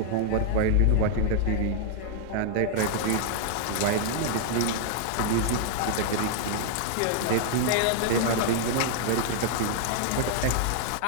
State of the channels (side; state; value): both; different; correlation -0.01